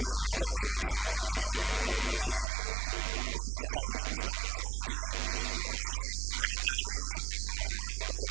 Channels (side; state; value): left; drops out; at 2.5 s